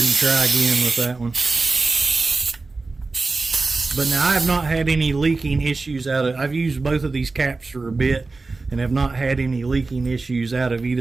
and try again with that one. But now I have not had any leaking issues out of, I've used both of these caps for a bit and have not had any leaking issues out of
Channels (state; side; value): quieter; left; 3.7 dB